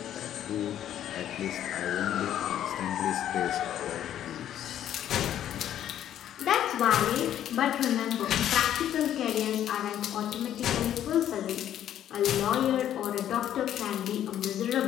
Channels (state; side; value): quieter; right; 11.0 dB